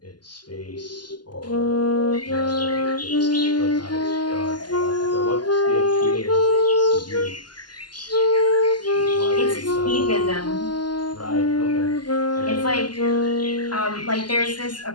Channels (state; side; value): late; right; 0.71 ms